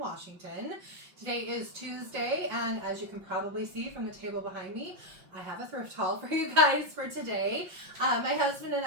Today is Tuesday, and as you can probably see from the table behind me, I have a thrift haul for you guys for today. My husband and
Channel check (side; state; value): left; late; 5.7 ms